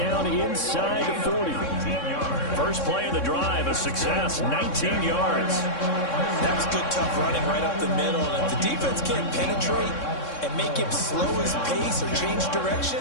inside the 40. First play of the drive, a success, 19 yards. That was good, tough running right up the middle. And if the defense can't penetrate and make him slow his pace or change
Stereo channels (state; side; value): late; right; 3.6 ms